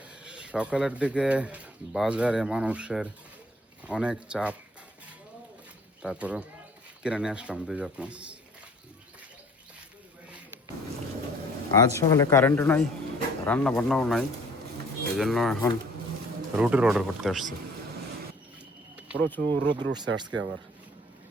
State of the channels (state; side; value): normal; both; correlation 0.55